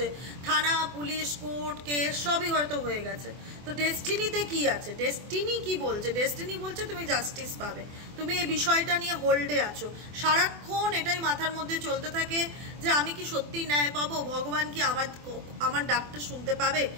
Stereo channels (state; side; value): late; left; 24 ms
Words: থানা পুলিশ কোর্ট কেস সবই হয়তো হয়ে গেছে। তো ডেস্টিনিতে কি আছে, ডেস্টিনি কি বলছে, ডেস্টিনি বলছে তুমি জাস্টিস পাবে, তুমি এই বিষয়টা নিয়ে হোল্ডে আছো, সারাক্ষণ এটাই মাথার মধ্যে চলতে থাকে যে আমি কি সত্যি ন্যায় পাবো, ভগবান কি আমার ডাকটা শুনতে পাবে,